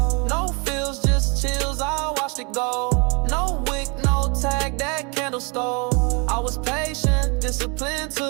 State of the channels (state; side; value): quieter; left; 31.7 dB